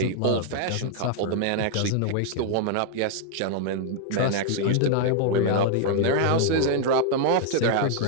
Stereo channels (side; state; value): both; different; correlation 0.00